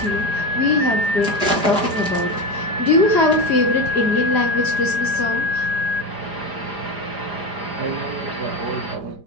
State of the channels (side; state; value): left; late; 4.9 ms